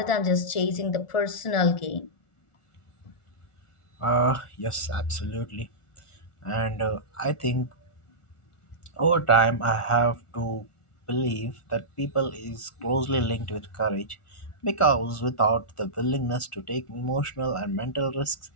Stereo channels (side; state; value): right; late; 1.4 ms